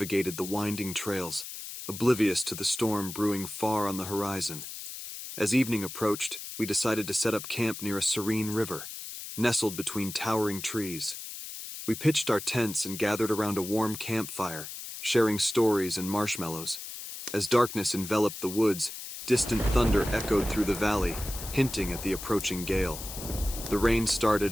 the winding trails, oblivious to the storm brewing far on the horizon. As evening approached, we decided to set up camp near a serene river, nestled between towering trees. We pitched our tents and gathered around a warm campfire, sharing stories and marshmallows. As darkness enveloped the woods, distant thunder echoed through the valley, hinting at the approaching gale. The rain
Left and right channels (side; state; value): left; noise; hiss, 9 dB below the sound